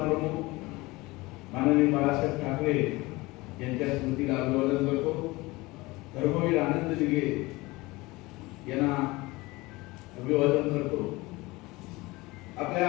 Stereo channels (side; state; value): right; quieter; 21.8 dB